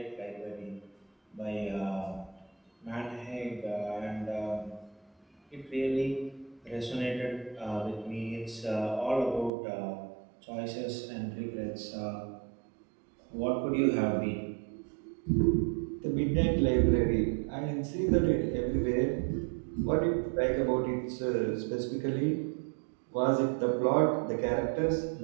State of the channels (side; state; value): left; drops out; at 9.5 s